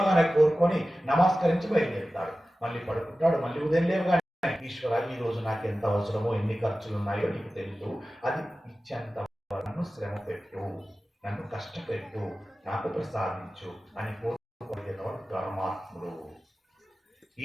కోరుకొని నమస్కరించి బయలుదేరుతాడు. మళ్ళీ పడుకుంటాడు, మళ్ళీ ఉదయం లేవగానే ఈశ్వర ఈ రోజు నాకు ఎంత అవసరమో ఎన్ని ఖర్చులు ఉన్నాయో నీకు తెలుసు, అది ఇచ్చేంత నన్ను శ్రమ పెట్టు, నన్ను కష్టపెట్టు, నాకు ప్రసాదించు అని కోరుకునేవాడు ధర్మాత్ముడు. ఈ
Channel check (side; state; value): both; normal; correlation 0.95